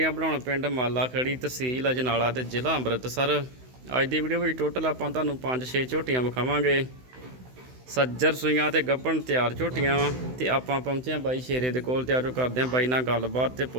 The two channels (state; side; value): late; left; 16 ms